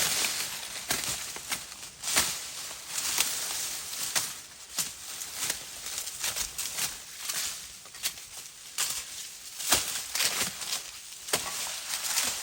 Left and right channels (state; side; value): identical; both; correlation 1.00